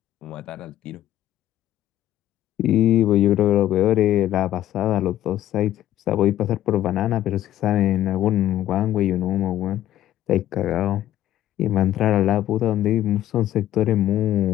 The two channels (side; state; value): right; quieter; 12.9 dB